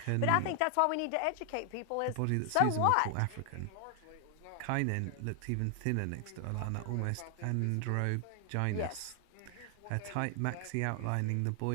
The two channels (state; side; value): different; both; correlation 0.00